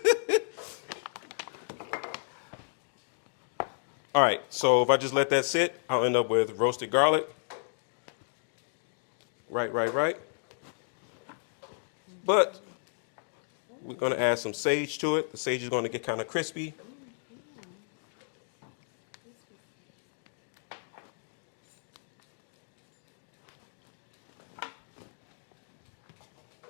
All right, so if I just let that sit, I'll end up with roasted garlic. Right. But we're gonna add some sage to it. The sage is gonna get kind of crispy.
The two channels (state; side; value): silent; right; digital silence